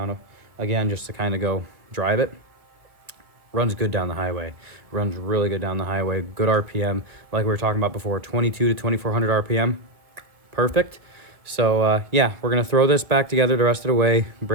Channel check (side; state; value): left; late; 1.5 ms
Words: again, just to kind of go drive it. Runs good down the highway. Runs really good down the highway. Good RPM. Like we were talking about before, 22 to 2400 RPM. Perfect. So yeah, we're going to throw this back together the rest of the way.